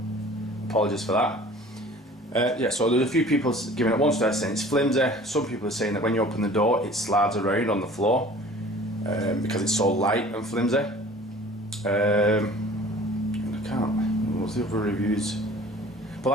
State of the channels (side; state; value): both; normal; correlation 0.47